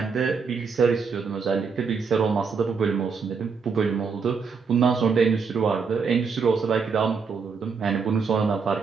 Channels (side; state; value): left; quieter; 5.4 dB